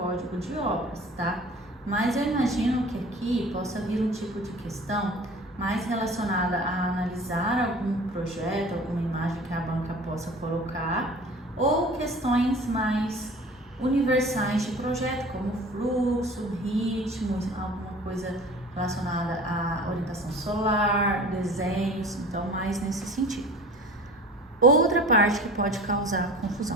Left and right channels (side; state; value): both; normal; correlation 0.42